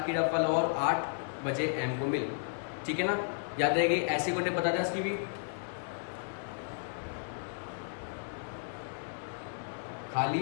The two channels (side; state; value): right; silent; digital silence